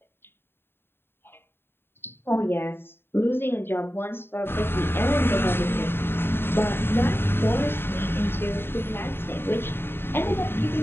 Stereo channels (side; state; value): right; late; 0.11 ms